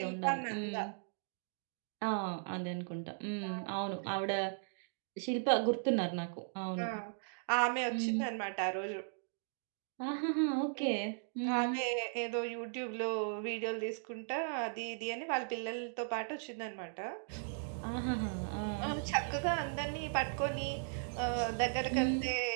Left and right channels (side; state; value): left; silent; digital silence